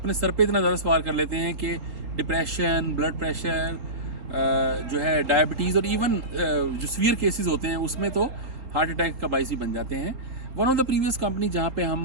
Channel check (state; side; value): late; left; 3.6 ms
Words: सर पे इतना ज़्यादा सवार कर लेते हैं कि डिप्रेशन, ब्लड प्रेशर, जो है डायबिटीज़ और इवन जो सीवियर केसेस होते हैं उसमें तो हार्ट अटैक का बाइस ही बन जाते हैं। One of the previous company जहाँ पे हम